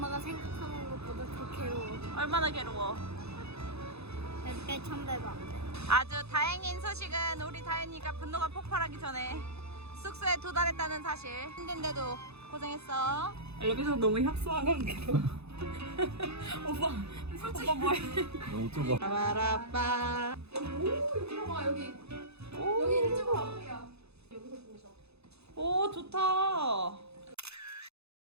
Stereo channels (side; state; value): left; late; 0.79 ms